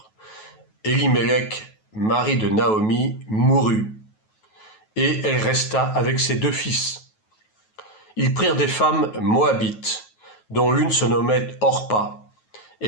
Elimelech, mari de Naomi, mourut, et elle resta avec ses 2 fils. Ils prirent des femmes moabites, dont l'une se nommait Orpa,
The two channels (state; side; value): late; right; 9.3 ms